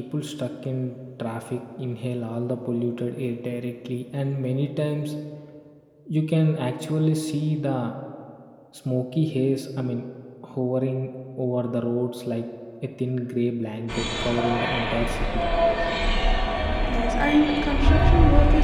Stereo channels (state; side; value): identical; both; correlation 1.00